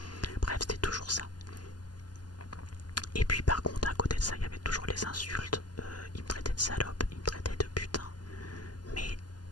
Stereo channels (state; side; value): late; right; 0.70 ms